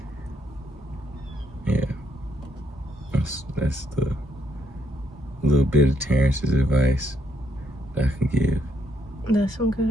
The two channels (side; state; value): both; normal; correlation 0.73